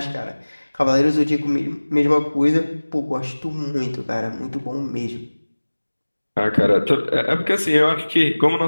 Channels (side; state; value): both; inverted; correlation -1.00